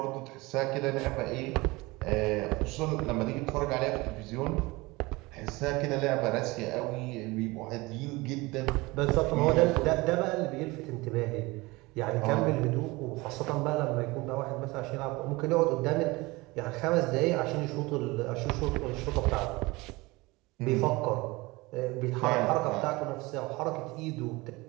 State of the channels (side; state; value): left; quieter; 22.6 dB